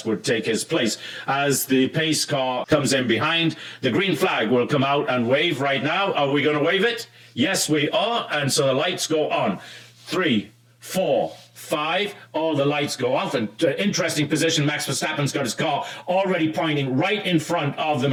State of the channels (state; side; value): identical; both; correlation 1.00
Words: would take his place. As the pace car comes in behind, the green flag will come out and wave right now. Are we going to wave it? Yes, we are. And so the lights go on. 3, 4, 5, all the lights go off. And interesting position, Max Verstappen's got his car already pointing right in front of the